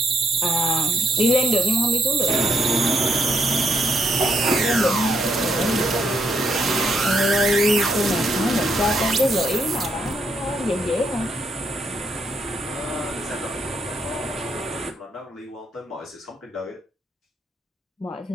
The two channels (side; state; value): both; normal; correlation 0.77